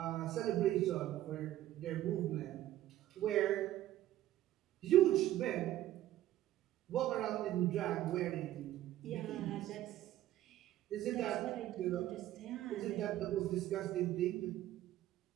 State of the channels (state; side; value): quieter; left; 13.8 dB